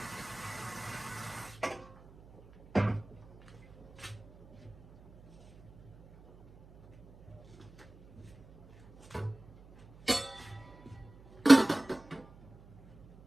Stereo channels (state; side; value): noise; right; hum, 24 dB below the sound